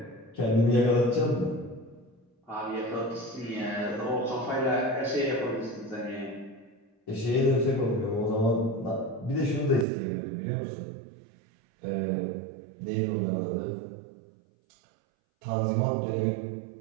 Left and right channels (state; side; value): drops out; left; at 9.9 s